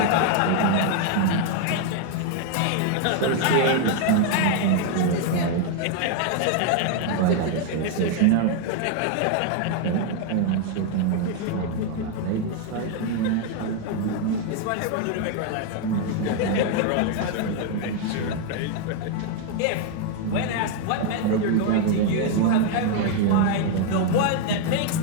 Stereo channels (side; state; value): both; different; correlation 0.00